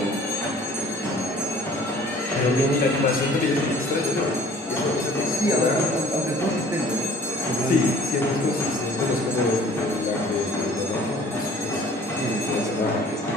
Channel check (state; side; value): normal; both; correlation 0.52